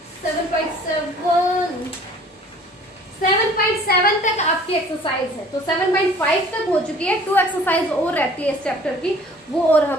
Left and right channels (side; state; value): both; normal; correlation 0.51